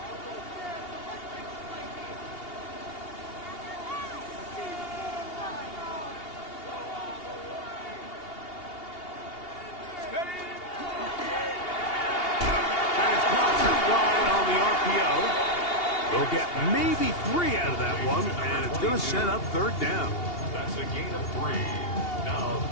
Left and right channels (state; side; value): late; right; 2.8 ms